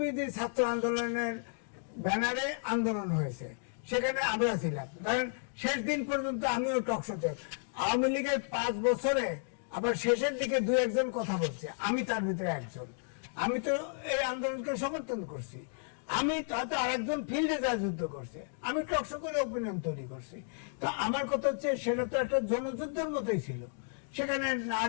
ছাত্র আন্দোলনের ব্যানারে আন্দোলন হয়েছে, সেখানে আমরা ছিলাম, ধরেন শেষ দিন পর্যন্ত আমিও টকশোতে, আওয়ামী লীগের 5 বছরে আবার শেষের দিকে 2-1 কথা বলছে, আমি তার ভিতরে একজন, আমি তো এই আন্দোলনকে সমর্থন করছি, আমি হয়তো আরেকজন ফিল্ডে যা যুদ্ধ করছে, আমি টকশো করে ওপিনিয়ন তৈরি করছি। তো আমার কথা হচ্ছে সেটা তো একটা জনযুদ্ধের মতোই ছিল, সেখানে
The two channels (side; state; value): right; silent; digital silence